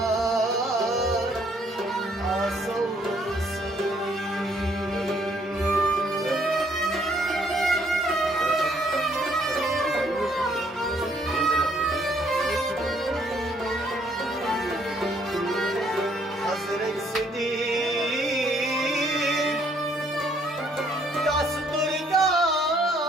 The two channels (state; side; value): normal; both; correlation 0.66